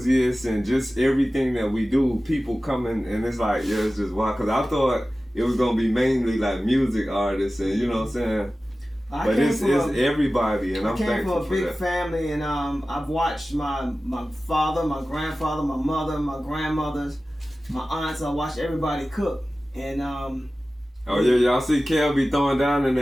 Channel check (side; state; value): both; normal; correlation 0.96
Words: and just everything that we do. People coming and it's like, yeah, it's just wild. Because I thought it was gonna be mainly like music artists and you know what I'm saying. But it's everybody, and I'm thankful for that. I came from a big family, and I've watched my father, my grandfather, my mother, my grandmothers, my aunts. I watched everybody cook, and oh yeah, y'all see Kel be throwing down in